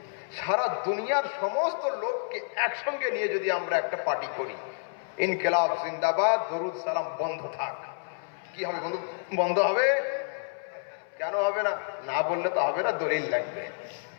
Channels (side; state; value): right; silent; 58 dB below the other